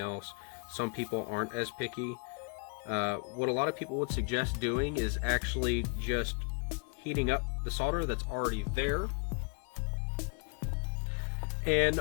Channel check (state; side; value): quieter; right; 36.7 dB